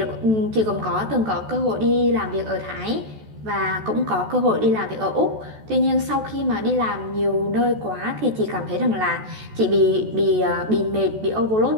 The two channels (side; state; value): left; late; 14 ms